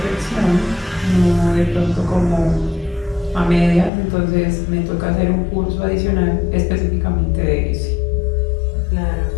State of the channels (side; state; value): right; drops out; at 3.9 s